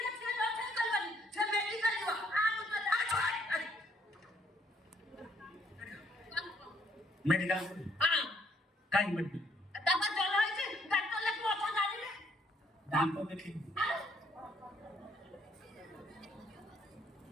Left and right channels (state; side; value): normal; both; correlation 0.68